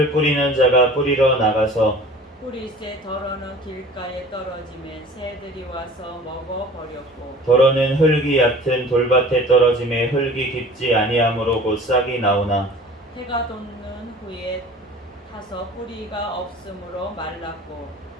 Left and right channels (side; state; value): both; normal; correlation 0.44